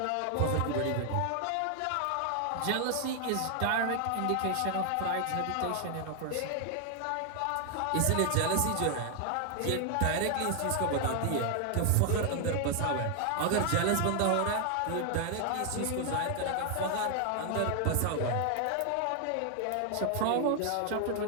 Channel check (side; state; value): both; different; correlation 0.00